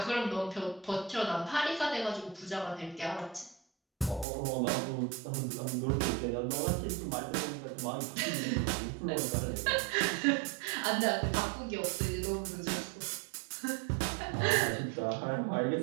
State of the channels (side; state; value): left; drops out; at 4.2 s